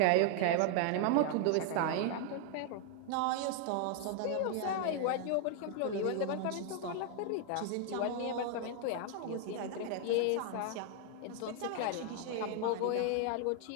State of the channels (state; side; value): different; both; correlation 0.00